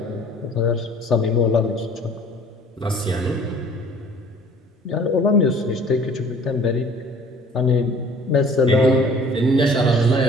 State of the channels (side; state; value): both; normal; correlation 0.51